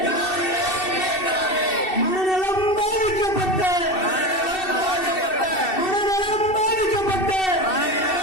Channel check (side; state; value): right; late; 2.7 ms